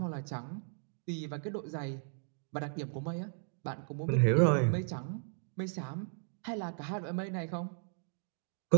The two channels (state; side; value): silent; left; 54 dB below the other